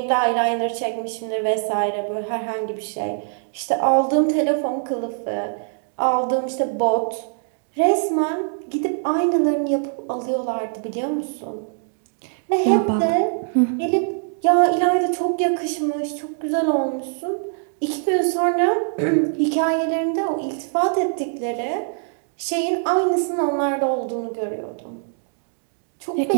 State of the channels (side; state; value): left; silent; digital silence